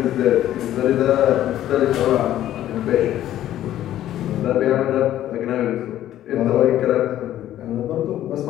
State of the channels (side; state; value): right; quieter; 12.6 dB